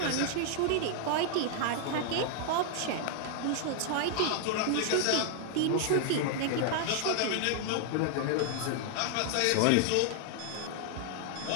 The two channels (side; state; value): both; different; correlation 0.00